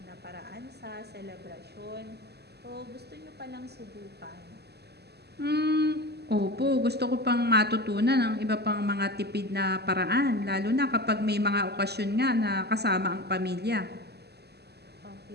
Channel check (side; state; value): left; late; 0.48 ms